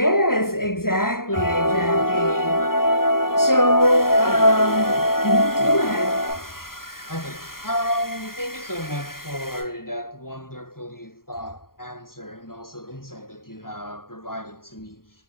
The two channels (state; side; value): late; right; 0.92 ms